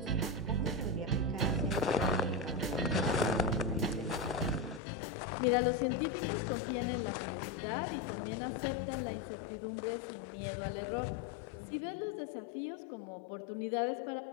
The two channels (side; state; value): right; drops out; at 4.8 s